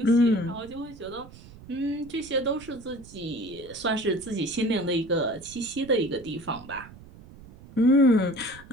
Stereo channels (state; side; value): noise; right; rumble, 20 dB below the sound